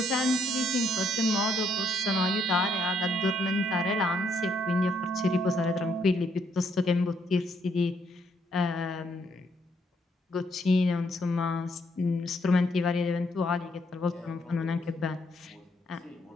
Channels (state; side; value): normal; both; correlation 0.73